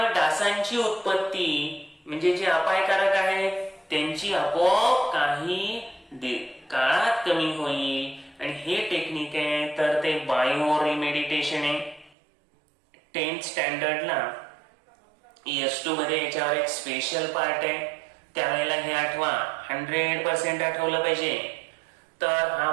डासांची उत्पत्ती, म्हणजे जे अपायकारक आहेत त्यांची आपोआप काही काळात कमी होईल. आणि हे टेक्निक आहे तर ते बायो रिमेडिटेशन आहे. 10th स्टँडर्डला ES2 मध्ये याच्यावर एक स्पेशल पार्ट आहे. त्यावेळेला हे आठवा, 100% आठवलं पाहिजे. तर हा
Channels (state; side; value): drops out; left; at 12.2 s